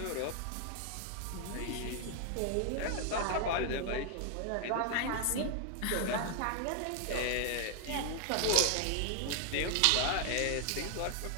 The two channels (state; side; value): different; both; correlation 0.00